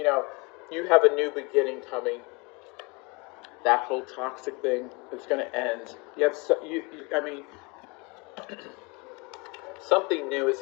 have a new beginning coming. That whole toxic thing is going to end. Something new is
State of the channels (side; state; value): right; quieter; 28.9 dB